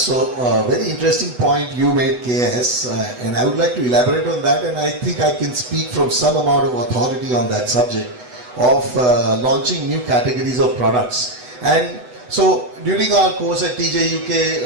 very interesting point you made, KS, and I would like to elaborate on that, and I think I can speak from some amount of authority on that subject of launching new categories of products. And so during our course at TJ UK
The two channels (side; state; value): left; late; 8.0 ms